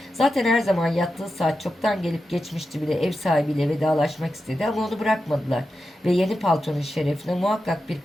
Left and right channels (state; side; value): normal; both; correlation 0.90